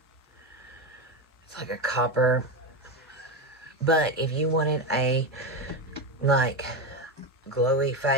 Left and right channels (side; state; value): both; normal; correlation 0.15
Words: It's like a copper. But if you wanted a, like, glowy